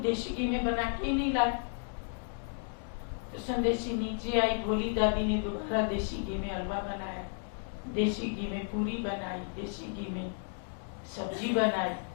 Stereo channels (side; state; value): right; silent; 56 dB below the other